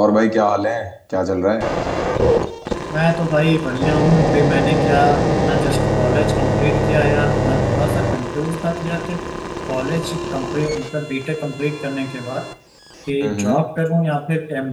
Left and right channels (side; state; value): both; identical; correlation 1.00